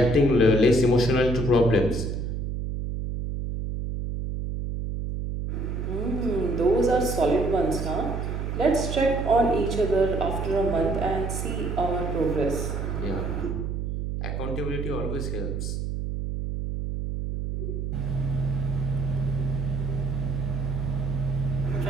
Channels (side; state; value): right; noise; hum, 3 dB below the sound